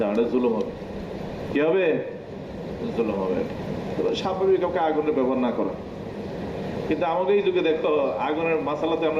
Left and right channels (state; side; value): identical; both; correlation 1.00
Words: না, জুলুম হবে। কি হবে? জুলুম হবে। স্বাভাবিক কাউকে আগুনের ব্যবহার না করা। কিন্তু আমাকে এই যুগে দেখো আগুনের মাসালাতে